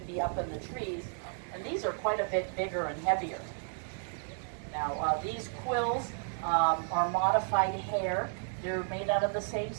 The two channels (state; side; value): silent; left; 56 dB below the other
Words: be up in the trees. And these are quite a bit bigger and heavier. Now, these quills are modified hair. They're made out of the same